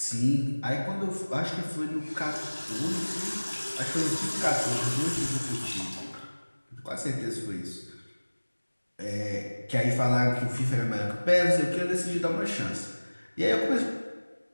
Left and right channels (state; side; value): inverted; both; correlation -1.00